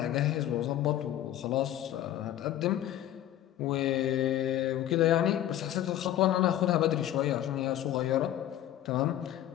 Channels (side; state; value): right; quieter; 12.3 dB